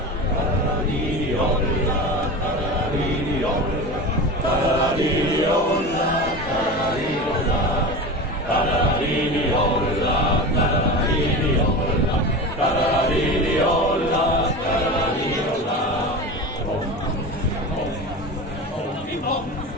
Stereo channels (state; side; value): normal; both; correlation 0.28